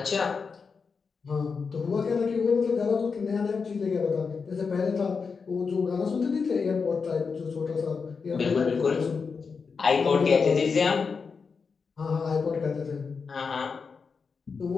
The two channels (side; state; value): right; quieter; 5.3 dB